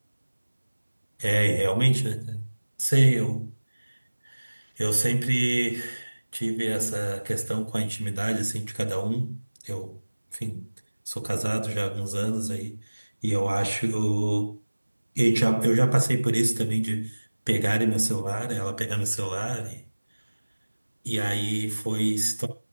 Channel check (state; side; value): inverted; both; correlation -1.00